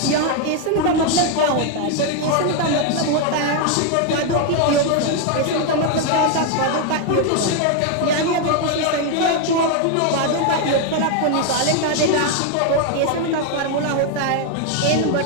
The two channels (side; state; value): both; different; correlation 0.01